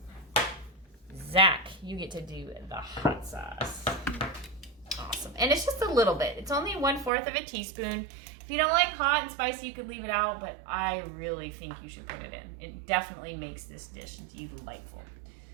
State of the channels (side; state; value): left; drops out; at 7.1 s